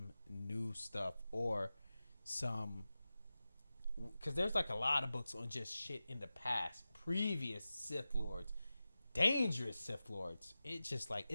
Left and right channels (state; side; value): inverted; both; correlation -0.95